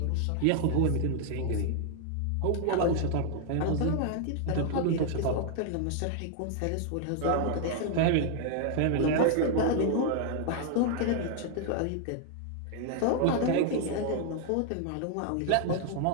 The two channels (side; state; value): both; different; correlation 0.00